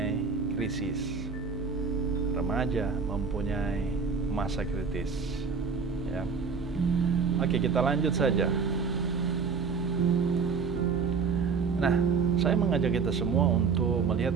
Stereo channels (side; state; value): left; quieter; 5.4 dB